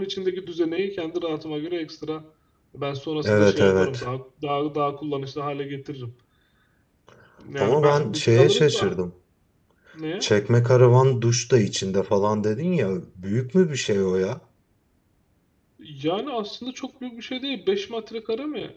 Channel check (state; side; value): identical; both; correlation 1.00